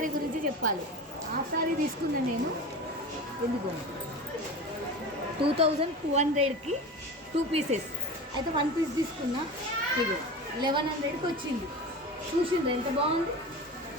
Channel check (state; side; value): normal; both; correlation 0.31